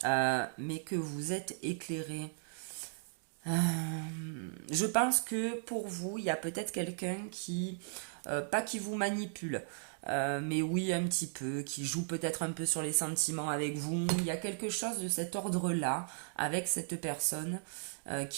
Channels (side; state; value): left; silent; digital silence